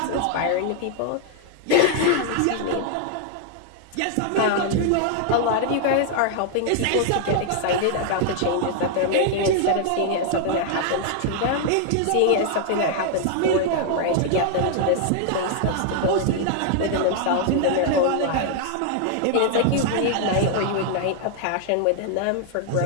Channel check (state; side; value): different; both; correlation 0.00